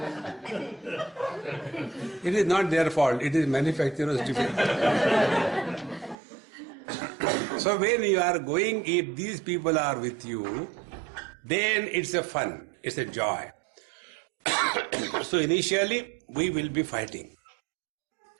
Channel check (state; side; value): drops out; left; at 6.2 s